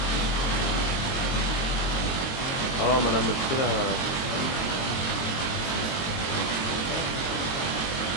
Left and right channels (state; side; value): late; right; 22 ms